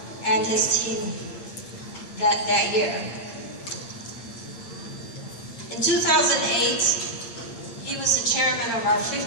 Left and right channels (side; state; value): right; late; 8.8 ms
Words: and his team that year. In 2008, he was the chairman of our